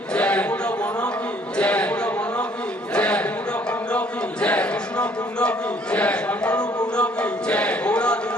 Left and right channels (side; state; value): both; normal; correlation 0.61